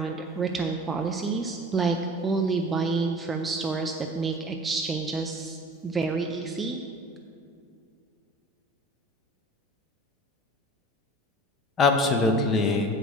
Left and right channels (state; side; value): normal; both; correlation 0.41